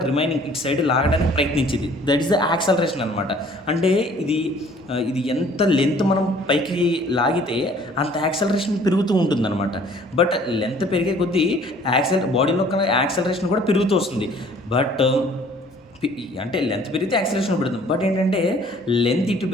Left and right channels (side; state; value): both; normal; correlation 0.55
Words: రిమైనింగ్ ఇటు సైడ్ లాగడానికి ప్రయత్నించింది. దట్ ఈస్ ద యాక్సలరేషన్ అనమాట. అంటే ఇది ఎంత లెంత్ మనం పైకి లాగితే అంత యాక్సలరేషన్ పెరుగుతూ ఉంటుంది అనమాట. బట్ లెంత్ పెరిగే కొద్దీ బాడీలో యాక్సలరేషన్ కూడా పెరుగుతూ వస్తుంది. బట్ అంటే లెంత్ పెరిగితే యాక్సలరేషన్ పెడుతుంది. బట్ ఏంటంటే లెంత్ ఇటు